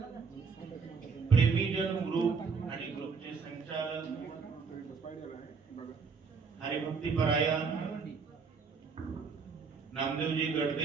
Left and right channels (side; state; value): left; quieter; 5.3 dB